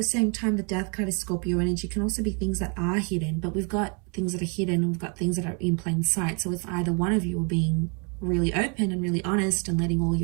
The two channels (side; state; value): left; quieter; 36.0 dB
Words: same time, the Death card is Scorpio energy. Can also be things that are hidden, but we've got things that are hidden and we've got things that are in plain sight. So if either one of you are being really open and really honest and letting all